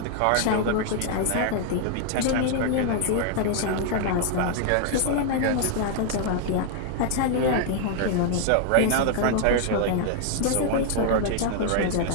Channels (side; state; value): both; different; correlation 0.00